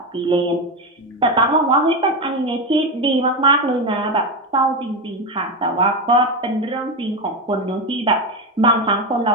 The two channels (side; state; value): both; normal; correlation 0.14